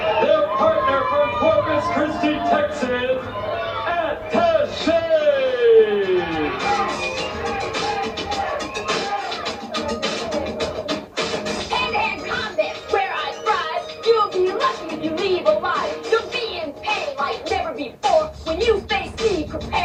Their partner from Corpus Christi, Texas, Attaché. Hand-to-hand combat, where I thrive. You'll be lucky if you leave alive. You'll be in pain like never before. When you face me,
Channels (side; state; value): both; identical; correlation 1.00